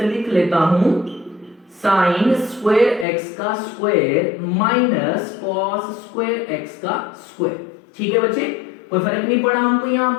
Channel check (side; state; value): right; drops out; at 3.1 s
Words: लिख लेता हूं, sin स्क्वायर x का square minus cos square x का स्क्वायर, ठीक है बच्चे। कोई फर्क नहीं पड़ा हमको, यहाँ